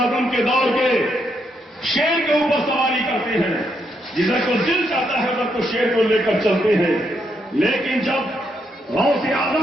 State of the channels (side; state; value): both; normal; correlation 0.78